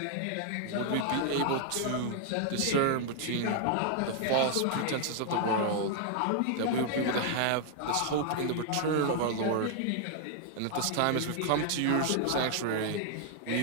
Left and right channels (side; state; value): both; different; correlation 0.00